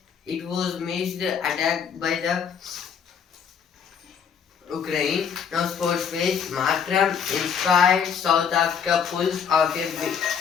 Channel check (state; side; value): quieter; right; 7.2 dB